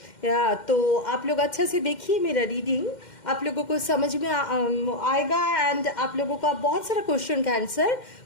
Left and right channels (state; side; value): late; right; 2.1 ms